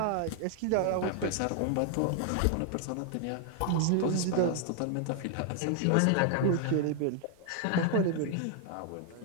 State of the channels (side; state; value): both; different; correlation 0.00